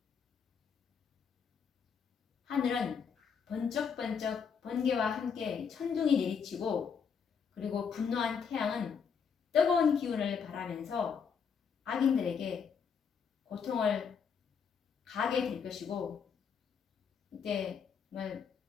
하늘은 번쩍번쩍 번개와 함께 천둥이 내리치고 그리고 분노한 태양은 뜨거운 기운을 발하면서 악인들에게 고통을 가게 될 것이고 이때 정말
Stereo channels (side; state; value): right; quieter; 6.5 dB